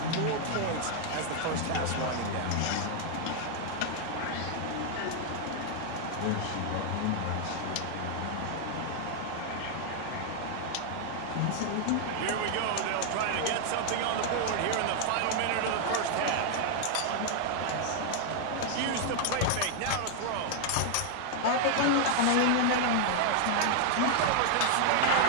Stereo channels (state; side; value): different; both; correlation 0.00